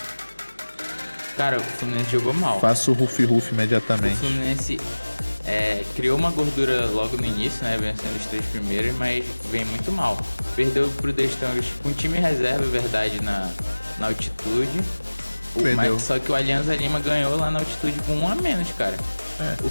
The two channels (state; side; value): inverted; both; correlation -1.00